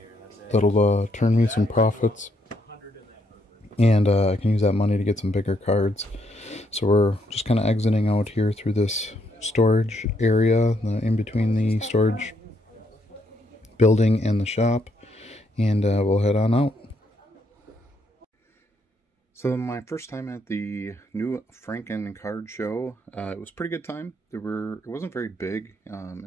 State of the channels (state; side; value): normal; both; correlation 0.74